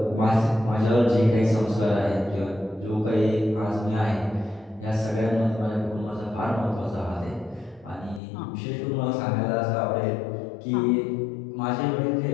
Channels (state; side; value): drops out; right; at 8.2 s